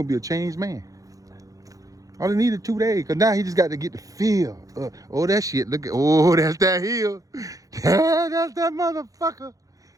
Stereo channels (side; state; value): left; late; 0.17 ms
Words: be a changed man. All he needed 2 days, cause now he just got to get the feel. Oh, that shit, look at, oh, that's that hill. That's that motherfucker.